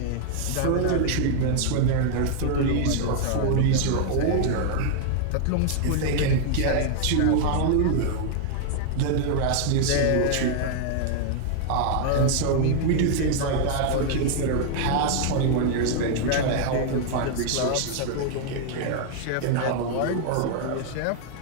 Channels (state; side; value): different; both; correlation 0.00